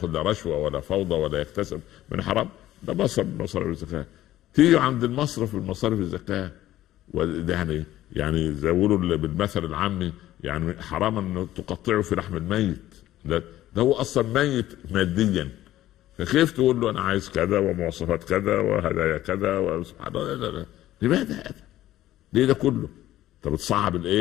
لا رشوه ولا فوضى ولا يكتسب من حرام، ده مصرف من مصارف الزكاه. تيجي عند المصرف من مصارف الزكاه، وده يعني زي يقولوا بالمثل العامي، يعني حرام ان تقطعه في لحم الميت. ده هو اصلا ميت ماديا، فكيف تقول له انا عايز كذا ومواصفات كذا وهدايا كذا وسبحان الله؟ لا. لماذا هذا؟ ليه ده كله؟ طب تصعب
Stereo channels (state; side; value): quieter; right; 14.2 dB